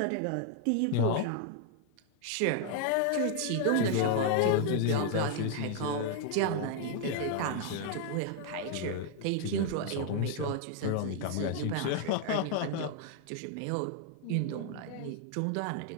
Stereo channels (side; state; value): both; different; correlation 0.00